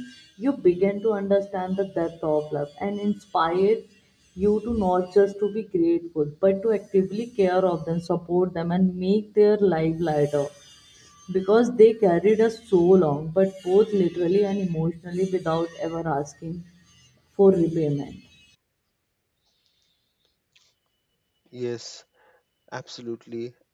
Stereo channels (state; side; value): identical; both; correlation 1.00